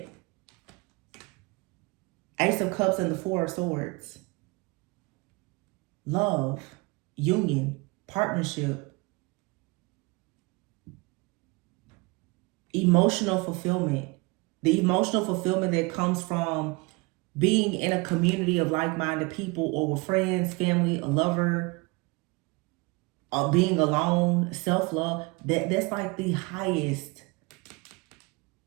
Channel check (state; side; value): quieter; left; 26.4 dB